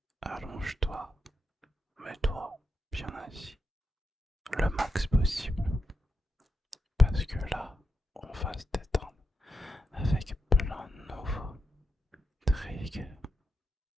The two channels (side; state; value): both; normal; correlation 0.86